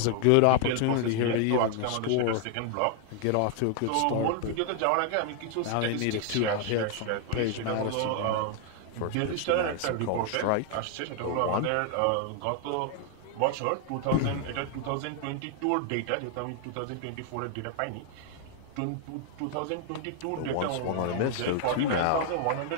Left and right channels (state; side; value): different; both; correlation 0.00